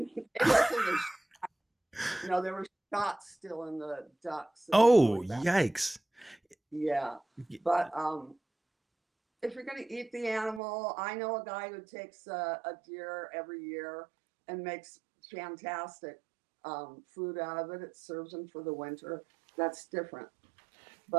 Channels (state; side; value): drops out; left; at 10.6 s